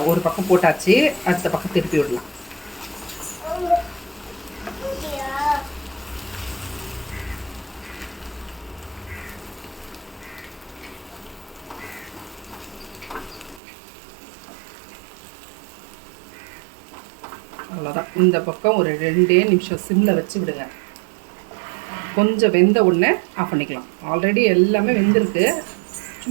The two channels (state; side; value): drops out; left; at 13.6 s